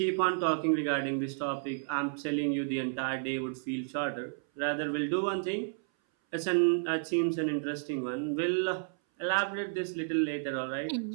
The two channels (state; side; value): silent; left; 57 dB below the other